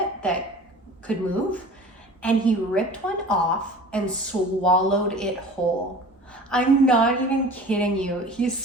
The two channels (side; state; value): both; normal; correlation 0.41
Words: that could move. And he ripped one off and swallowed it whole. I'm not even kidding you. He